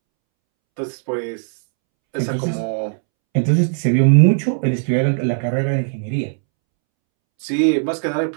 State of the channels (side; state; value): left; silent; 67 dB below the other